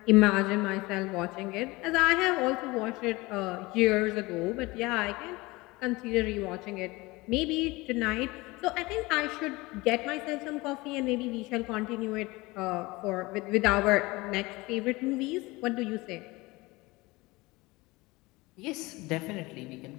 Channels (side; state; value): right; quieter; 22.3 dB